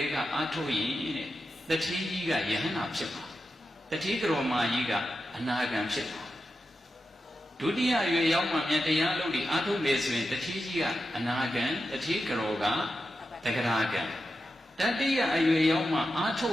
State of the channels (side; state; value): both; normal; correlation 0.90